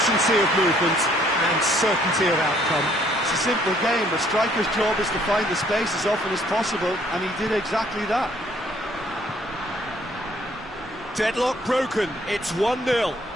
of movement, and certainty of outcome. It's a simple game. A striker's job is to find the space as often as possible, and he did exactly that. Deadlock broken, it's 1-0.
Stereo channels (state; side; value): normal; both; correlation 0.63